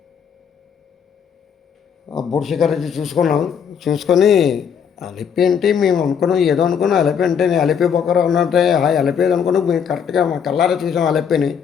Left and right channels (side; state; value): right; quieter; 7.4 dB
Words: ఆ బోట్ శిఖర్ చూసుకొని అలిపి అంటే మేము అనుకున్నాం, ఏదో అనుకున్నాం అలిపి అంటే నేను అలిపి బొక్కర ఉన్నట్టే అలిపేది అనుకున్నాం. మేము కరెక్ట్గా మా కల్లారా చూసాం అలిపిని.